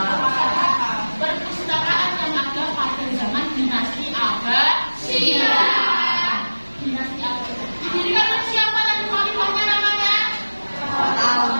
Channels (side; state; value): both; inverted; correlation -1.00